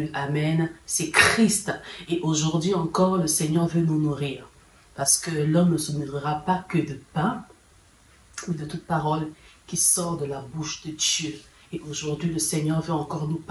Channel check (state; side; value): identical; both; correlation 1.00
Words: amen, c'est Christ. Et aujourd'hui encore, le Seigneur veut nous nourrir. Parce que l'homme ne se nourrira pas que de pain, mais de toute parole qui sort de la bouche de Dieu. Et aujourd'hui, le Seigneur veut encore nous